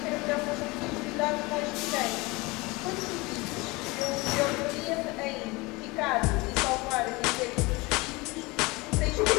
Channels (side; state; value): right; quieter; 24.0 dB